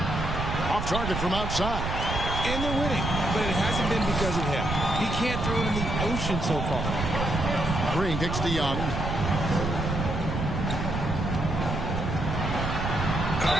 Off target from outside. And they're winning, but it hasn't been because of him. He can't throw it in the ocean so far. Green kicks to Young.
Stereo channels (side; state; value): right; noise; rumble, 3 dB below the sound